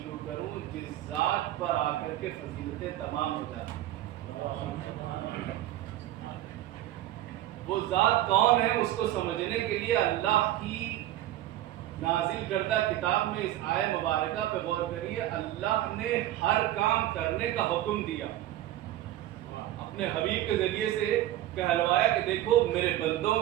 کروں جس ذات پر آ کر کے فضیلتیں تمام ہو جاتی ہیں. وہ ذات کون ہے اس کو سمجھنے کے لیے اللہ کی نازل کردہ کتاب میں اس آیہ مبارکہ پہ غور کریے. اللہ نے ہر کام کرنے کا حکم دیا، اپنے حبیب کے ذریعے سے کہلوایا کہ دیکھو میرے بندوں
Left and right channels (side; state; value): left; quieter; 14.0 dB